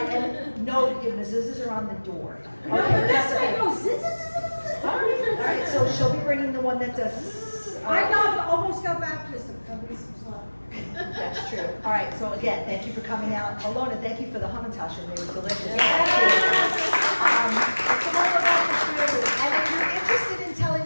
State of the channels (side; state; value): both; inverted; correlation -1.00